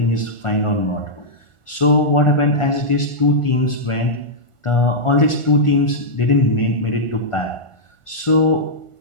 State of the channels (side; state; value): right; late; 1.4 ms